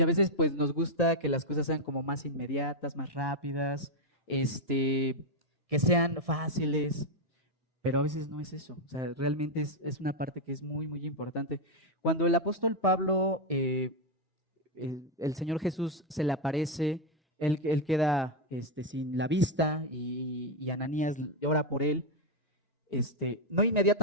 a veces pues nos gusta que las cosas sean como más inmediatas, más rápidas, que sean fáciles, pero a veces no es eso. O sea, realmente es una parte que es muy, muy importante. Cuando el apóstol Pablo, el Señor Jesús se le aparece, él queda sin la vista y Ananías ora por él. No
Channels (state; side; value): normal; both; correlation 0.04